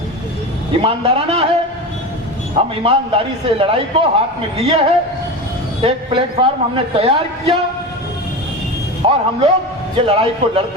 ईमानदाराना है, हम ईमानदारी से लड़ाई को हाथ में लिए हैं। एक प्लेटफॉर्म हमने तैयार किया और हम लोग ये लड़ाई को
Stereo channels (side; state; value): both; normal; correlation 0.25